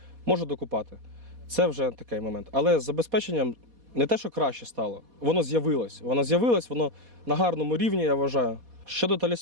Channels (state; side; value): late; left; 4.2 ms